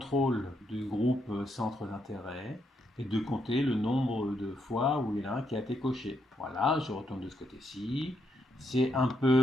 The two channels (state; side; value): normal; both; correlation 0.78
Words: du groupe centre d'intérêt et de compter le nombre de fois où il y en a un qui a été coché. Voilà, je retourne de ce côté-ci. C'est un